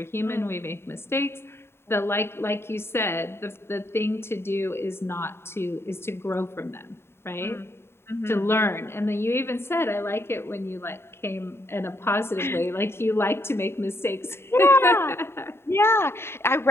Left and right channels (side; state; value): right; late; 0.12 ms